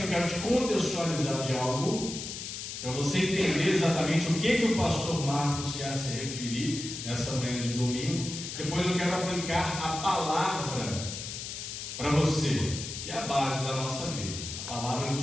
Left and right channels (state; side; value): noise; left; hiss, 7 dB below the sound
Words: quero te contextualizar de algo, para você entender exatamente o que o pastor Marcos quer se referir nessa manhã de domingo. Depois eu quero aplicar a palavra para você, que é a base da nossa vida. A palavra do